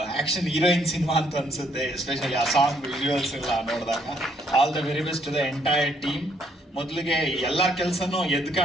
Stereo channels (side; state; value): both; normal; correlation 0.69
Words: ಆ್ಯಕ್ಷನ್ ಹೀರೋಯಿನ್ ಸಿನಿಮಾ ಅಂತ ಅನಿಸುತ್ತೆ, ಎಸ್ಪೆಷಲಿ ಆ ಸಾಂಗ್ ವಿಜುವಲ್ಸ್ ಎಲ್ಲ ನೋಡಿದಾಗ. All the very best to the entire team. ಮೊದಲಿಗೆ ಎಲ್ಲರ ಕೆಲಸನೂ ಎದ್ದು